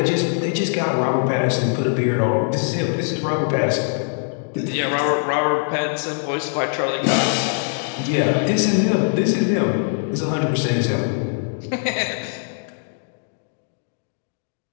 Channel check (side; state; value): right; silent; digital silence